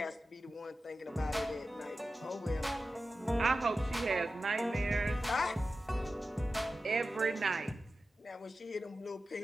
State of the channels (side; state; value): both; normal; correlation 0.93